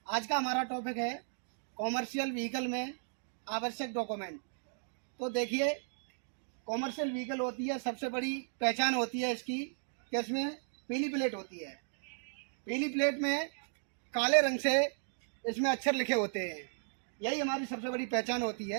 आज का हमारा टॉपिक है कॉमर्शियल व्हीकल में आवश्यक डॉक्यूमेंट। तो देखिए, कॉमर्शियल व्हीकल होती है, सबसे बड़ी पहचान होती है इसकी कि इसमें पीली प्लेट होती है। पीली प्लेट में काले रंग से इसमें अक्षर लिखे होते हैं। यही हमारी सबसे बड़ी पहचान होती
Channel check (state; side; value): silent; left; digital silence